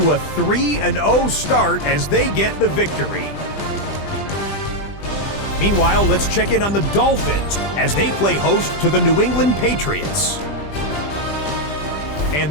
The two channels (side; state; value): right; late; 20 ms